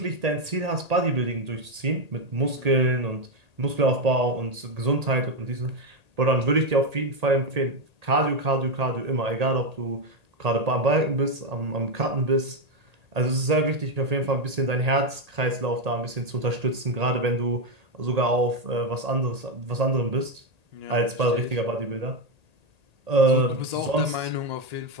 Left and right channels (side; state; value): left; late; 1.8 ms